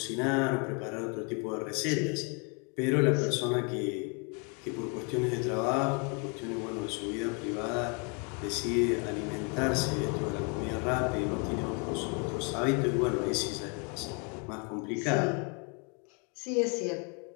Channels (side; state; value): right; quieter; 35.3 dB